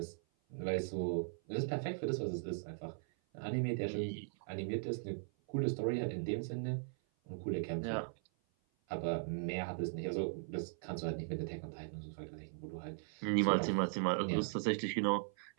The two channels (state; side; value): silent; left; 52 dB below the other